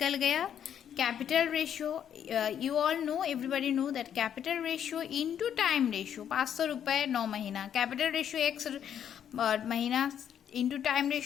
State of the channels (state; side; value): quieter; right; 9.2 dB